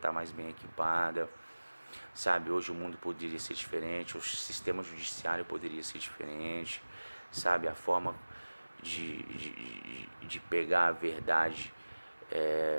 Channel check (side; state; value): both; inverted; correlation -1.00